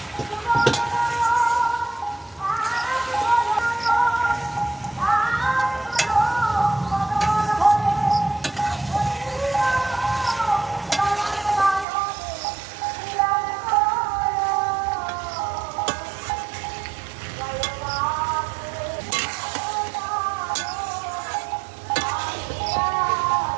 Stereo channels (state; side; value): drops out; left; at 11.9 s